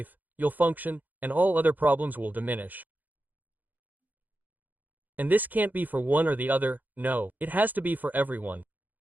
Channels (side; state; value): left; late; 0.084 ms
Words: you'll function, and all other problems will diminish. And this can't be for one or the other, no, it has to be for everyone.